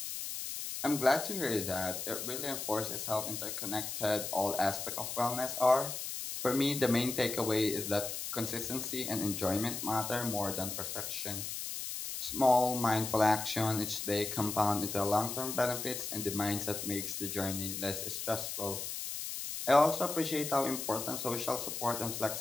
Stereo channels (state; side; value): noise; left; hiss, 5 dB below the sound